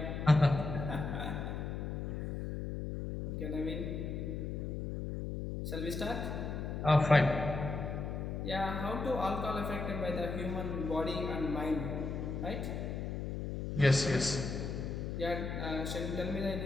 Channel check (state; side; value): noise; left; hum, 4 dB below the sound